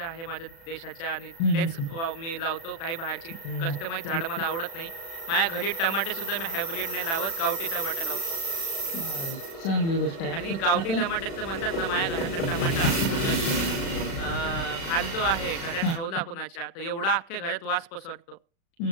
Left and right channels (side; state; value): right; late; 36 ms